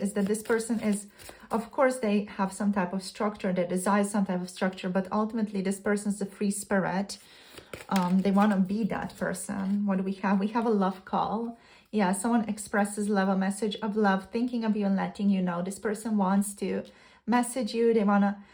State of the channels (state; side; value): identical; both; correlation 1.00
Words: that this person is, of course, they have some type of structure, they desire some type of structure, but ultimately this person is a free spirit. They want to be that person. What do we have? We have a love call. Yeah, someone expresses love, a message of love, thinking of you and letting you know. This person wants to message you. They want to